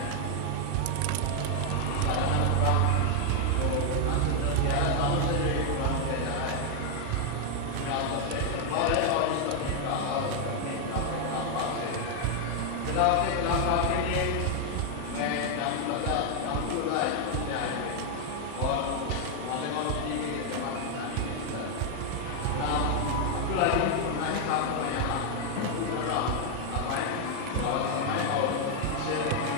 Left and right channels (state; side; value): different; both; correlation 0.00